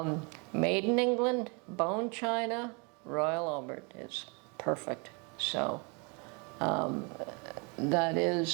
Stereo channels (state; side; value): quieter; left; 32.1 dB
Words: made in England, bone china, Royal Albert is perfect. So that